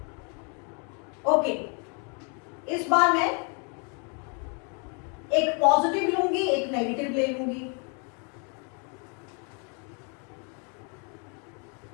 ओके, इस बार मैं एक पॉजिटिव लूंगी, एक नेगेटिव ले लूंगी।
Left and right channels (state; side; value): quieter; right; 36.9 dB